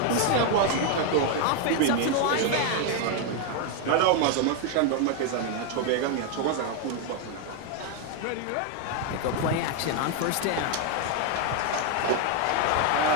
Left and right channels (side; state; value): both; different; correlation 0.01